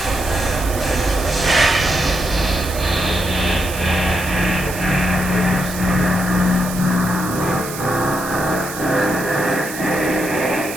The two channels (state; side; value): noise; right; hiss, 10 dB below the sound